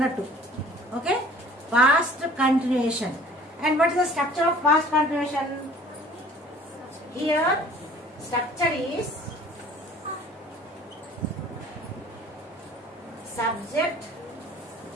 Okay, past continuation. And what is the structure of past continuation? Here structure is subject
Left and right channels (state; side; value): normal; both; correlation 0.50